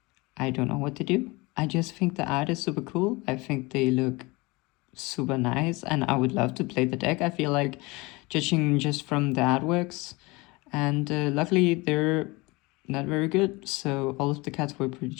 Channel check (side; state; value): right; quieter; 24.3 dB